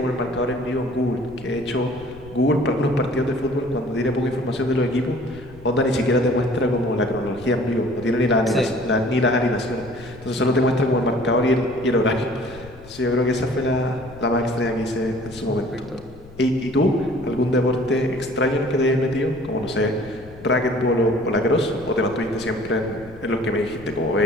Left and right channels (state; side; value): noise; left; rumble, 19 dB below the sound